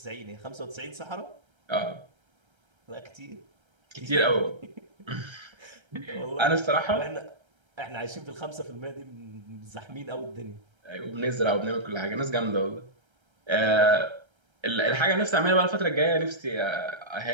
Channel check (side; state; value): left; late; 1.3 ms